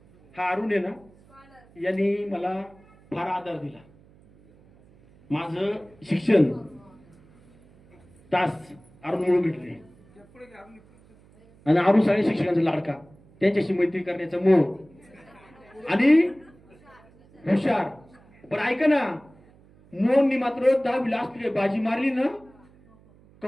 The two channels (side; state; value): right; noise; hum, 28 dB below the sound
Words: हा अरुण आहे ना, यांनी मला फार आधार दिला. माझं शिक्षण तास अरुण म्हणून भेटले आणि अरुण सगळ्या शिक्षकांचा लाडका, त्यांच्याशी मैत्री करण्याचा मोह आणि हुशार. पण ऐका ना, मोहननी मात्र 10 लास्ट बाजी मारली ना,